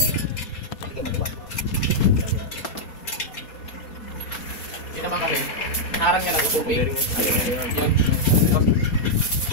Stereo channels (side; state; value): right; late; 4.2 ms